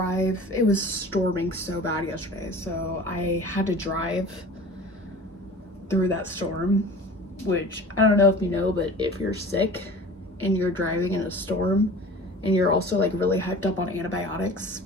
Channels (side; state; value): both; normal; correlation 0.41